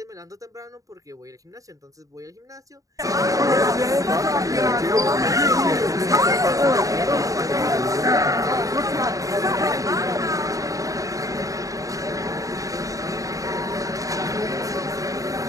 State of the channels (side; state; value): left; late; 0.16 ms